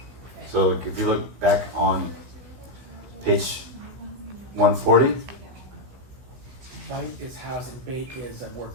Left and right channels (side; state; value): left; late; 16 ms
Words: So like, if you look back on page 140, Bite is house and bait is a word